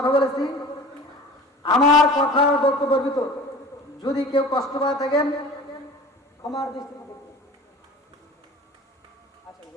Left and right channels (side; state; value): both; normal; correlation 0.40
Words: বলেছি, আমার কথার বক্তব্যের ভিতর যদি কেউ কষ্ট পায় থাকেন ক্ষমার দৃষ্টিতে